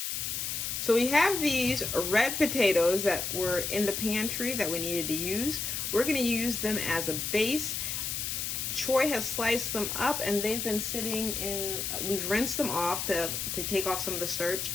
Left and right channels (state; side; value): noise; left; hiss, 2 dB below the sound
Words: So we have these red potatoes that were in the pantry that we needed to use. We're gonna use them as a base. Troy has sliced them up and they've been sitting in, we've rinsed them off to take off some of the starch.